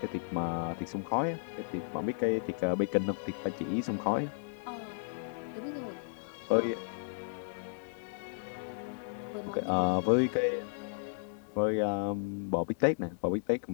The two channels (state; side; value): silent; right; digital silence